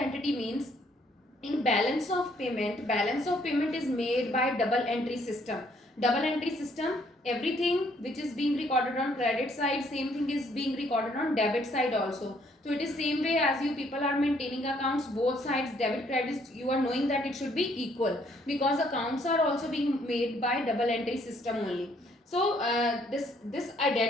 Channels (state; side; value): normal; both; correlation 0.66